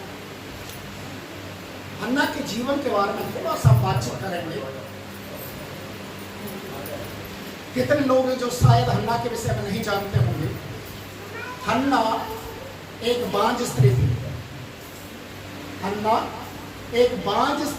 हन्ना के जीवन के बारे में थोड़ा सा बातचीत करेंगे। कितने लोग हैं जो शायद हन्ना के विषय में नहीं जानते होंगे। हन्ना एक बांझ स्त्री थी। हन्ना एक बांझ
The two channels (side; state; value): both; identical; correlation 1.00